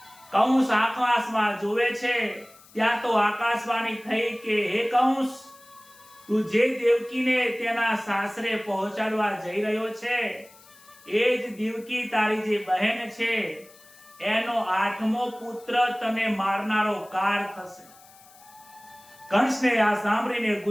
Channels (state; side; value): noise; left; hiss, 25 dB below the sound